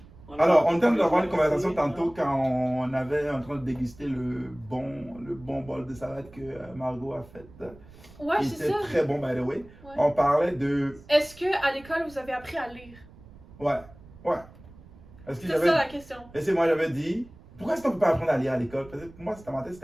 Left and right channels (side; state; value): right; noise; rumble, 21 dB below the sound